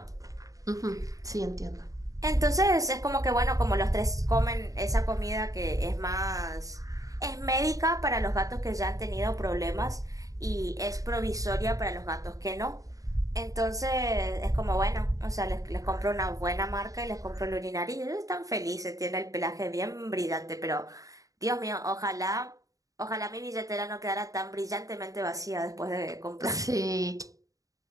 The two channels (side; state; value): left; late; 0.17 ms